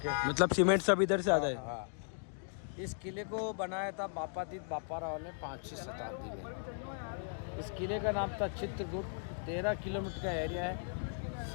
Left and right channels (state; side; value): silent; right; digital silence